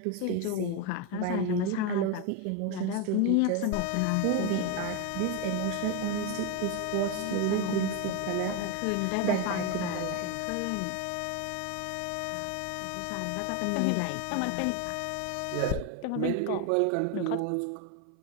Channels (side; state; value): both; different; correlation 0.02